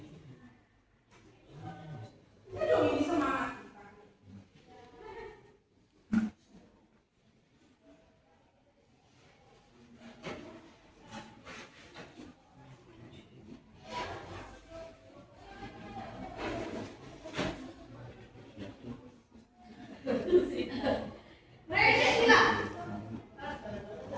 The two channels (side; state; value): both; identical; correlation 1.00